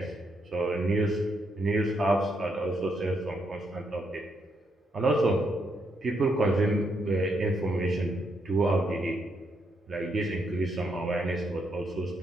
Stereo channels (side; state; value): both; normal; correlation 0.78